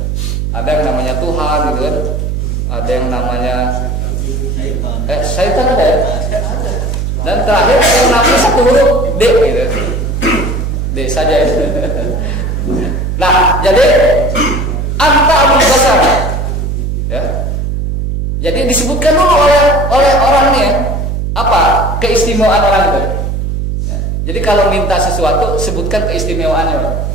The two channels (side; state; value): right; noise; hum, 2 dB below the sound